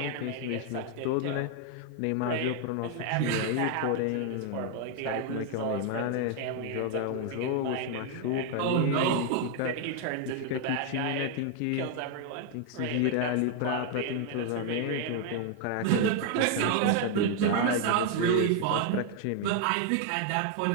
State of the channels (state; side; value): different; both; correlation 0.00